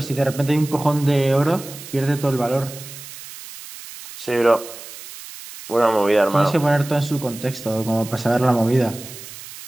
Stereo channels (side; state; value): right; noise; hiss, 14 dB below the sound